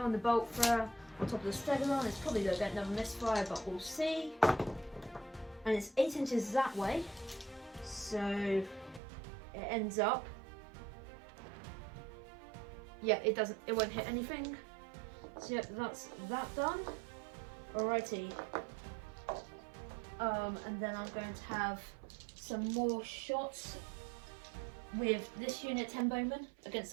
the bolt thrower on top of the stegodon. It's probably going to get another misfire, but we'll see. And it's 8 inches that way, so it ends up. Yeah, it won't hit anything. So yep, that's that done. Alrighty. And then I'm going to have some more shots with this unit 10 bowmen against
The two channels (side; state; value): left; drops out; at 9.0 s